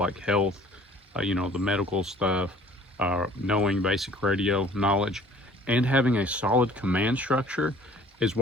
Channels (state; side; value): normal; both; correlation 0.53